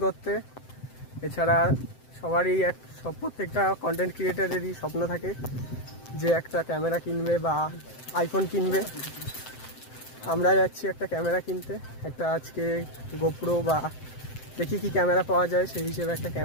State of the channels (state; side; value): late; right; 7.8 ms